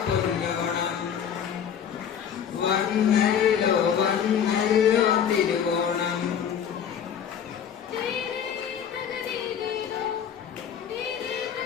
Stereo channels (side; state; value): right; quieter; 8.3 dB